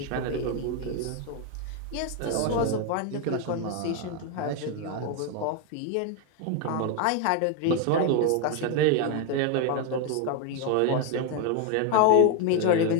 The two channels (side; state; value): both; different; correlation 0.01